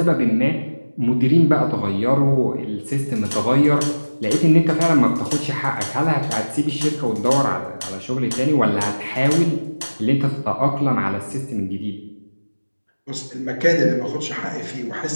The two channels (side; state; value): both; inverted; correlation -1.00